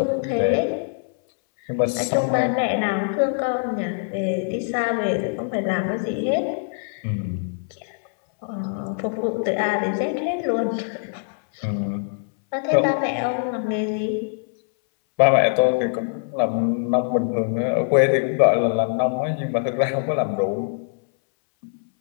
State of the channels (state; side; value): silent; right; 63 dB below the other